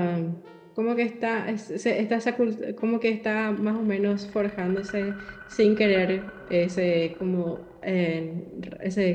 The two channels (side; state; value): both; identical; correlation 1.00